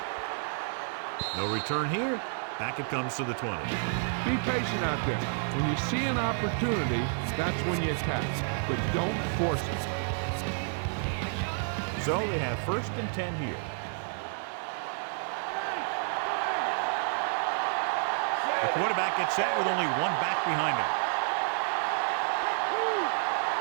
No return here. Back it comes to the 20. Be patient out there. When you see an opportunity, that's when you attack. But don't force it. So they have 1st and 10 here. The quarterback gets set with only one back behind him.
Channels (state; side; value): silent; left; 58 dB below the other